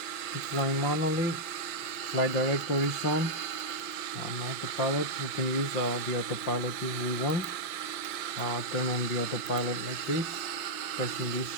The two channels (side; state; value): right; late; 5.8 ms